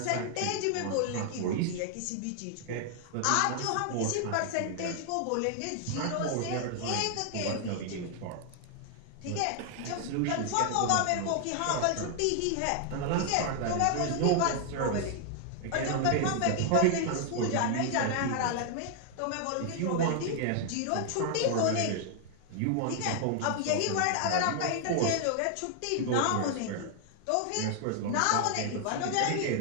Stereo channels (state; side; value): different; both; correlation 0.00